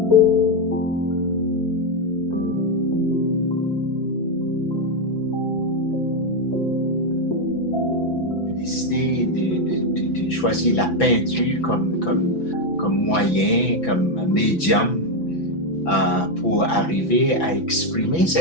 Décidé de choisir la peinture comme moyen, comme médium pour arriver à exprimer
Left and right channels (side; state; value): right; late; 5.9 ms